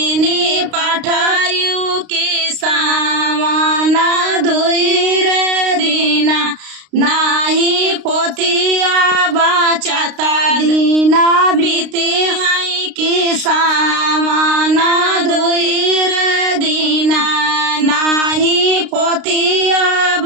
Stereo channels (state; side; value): late; left; 32 ms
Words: पाठायु की सावाना दुई रे दीना। नाही पोतिया बचाता दीना बीते है की सावाना दुई रे दीना। नाही पोतिया